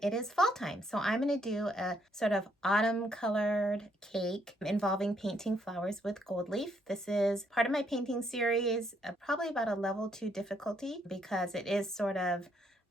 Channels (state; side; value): normal; both; correlation 0.72